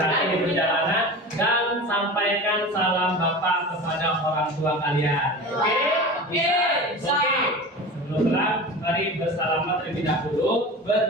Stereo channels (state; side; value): normal; both; correlation 0.33